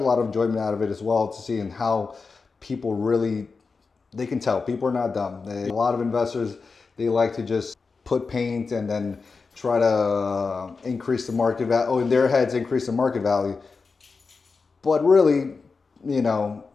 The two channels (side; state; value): right; quieter; 4.6 dB